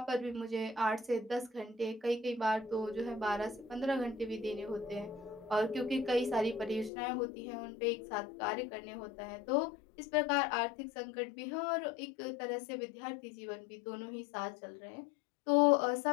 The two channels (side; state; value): right; drops out; at 6.9 s